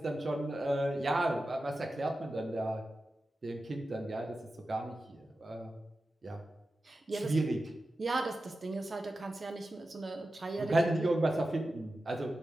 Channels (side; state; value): both; normal; correlation 0.93